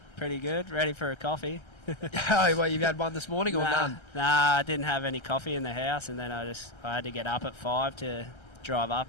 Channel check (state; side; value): late; right; 1.3 ms